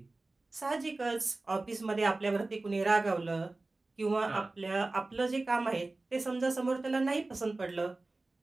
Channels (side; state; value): left; quieter; 3.2 dB